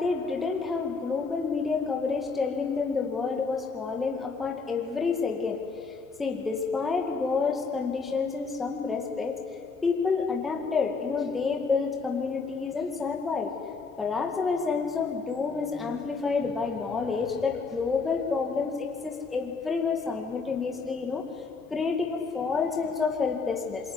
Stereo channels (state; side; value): quieter; right; 4.6 dB